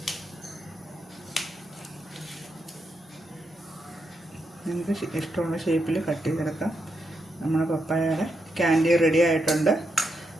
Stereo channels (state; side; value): normal; both; correlation 0.83